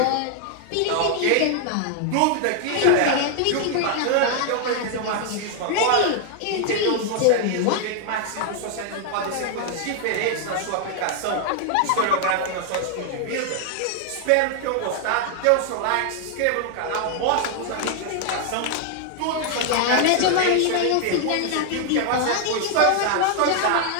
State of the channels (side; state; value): both; different; correlation 0.00